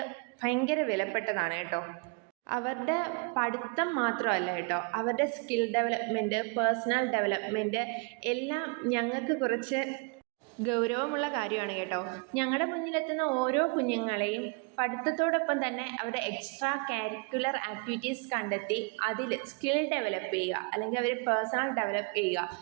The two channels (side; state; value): left; quieter; 33.1 dB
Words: ഭയങ്കര വിലപ്പെട്ടതാണ് കേട്ടോ. അവരുടെ പഠിത്തം മാത്രമല്ല കേട്ടോ, അവരുടെ സ്കിൽ ഡെവലപ്മെൻറ്റ്, പേഴ്സണൽ ഡെവലപ്മെൻറ്റ് എല്ലാം ഞങ്ങൾക്ക് കുറച്ച് ഗൗരവമുള്ള കാര്യമാണ് കേട്ടോ. ഞങ്ങളുടെ മുന്നിലെത്തുന്ന ഓരോ കുഞ്ഞുങ്ങളെയും പഠിത്തത്തോടൊപ്പം തന്നെ അവരുടെ എക്സ്ട്രാ കരിക്കുലർ ആക്ടിവിറ്റീസ് കണ്ടെത്തി അതിൽ സ്കിൽ ഡെവലപ്പ് ചെയ്യുക, അല്ലെങ്കിൽ അവർ പേഴ്സണൽ ഡെവലപ്പ് ചെയ്യുക.